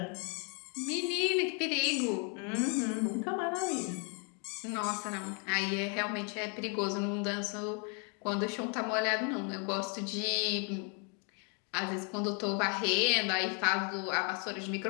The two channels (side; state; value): right; quieter; 37.6 dB